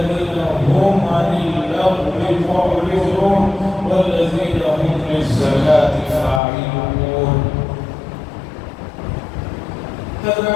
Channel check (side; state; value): right; drops out; at 6.4 s